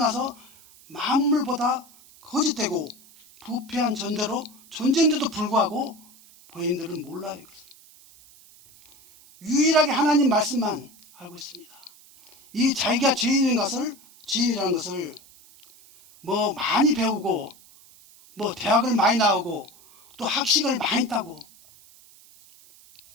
만물보다 거짓되고 부패한 존재로 존재인데도 불구하고 본인들은 몰라요. 이것을. 유일하게 하나님 말씀만 알고 있습니다. 이 자기가 죄인이라는 것을 뭐 많이 배우고 뭐 대학을 많이 나오고 또 학식을 많이 따고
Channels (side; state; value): right; noise; hiss, 25 dB below the sound